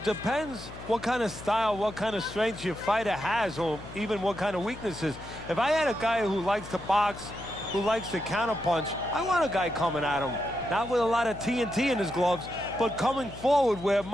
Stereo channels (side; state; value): left; noise; hum, 14 dB below the sound